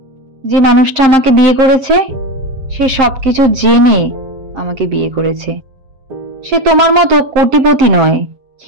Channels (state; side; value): late; left; 7.6 ms